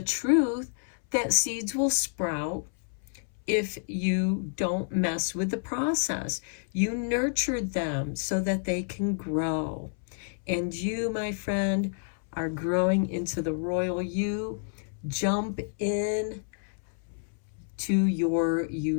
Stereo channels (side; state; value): right; silent; 58 dB below the other